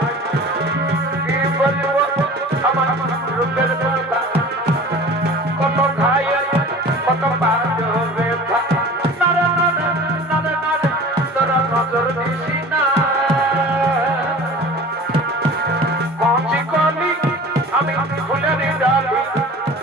কি বলবো আমার রূপের কথা কত খাই কত বাজো ব্যথা নারে নারে নারে নারে তোরা নজর দিছি না পৌঁছি কলি আমি ফুলের ডালি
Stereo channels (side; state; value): both; normal; correlation 0.41